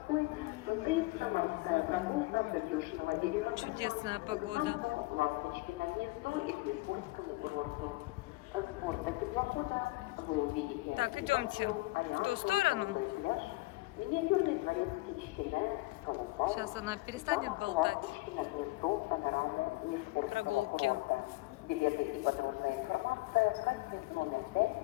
состоится морская прогулка Придюшного берега. Чудесная погода. Ласточки на гнездо и к Лискурскому курорту. С борта теплохода вы увидите. Так, идемте в ту сторону. Сейчас она перестанет болтать. Прогулки.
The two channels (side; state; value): right; quieter; 22.1 dB